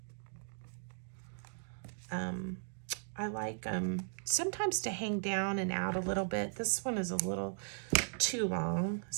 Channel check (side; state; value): left; silent; digital silence